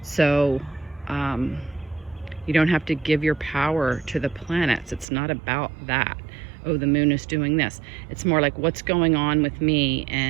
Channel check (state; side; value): drops out; left; at 5.1 s